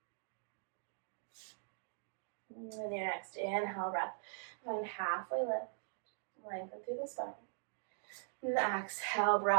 And then your next inhale, breath, find halfway lift, lengthen through the spine. And the exhale,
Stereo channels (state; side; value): silent; left; digital silence